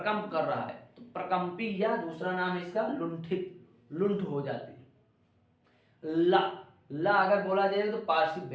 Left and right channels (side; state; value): both; identical; correlation 1.00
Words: कर रहा है, तो प्रकंपी, या दूसरा नाम है इसका लुंठित, लुंठ हो जाती है। ला अगर बोला जाए तो पार्श्विक